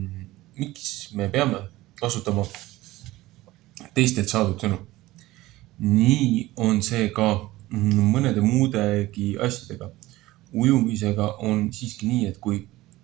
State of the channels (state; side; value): quieter; left; 17.9 dB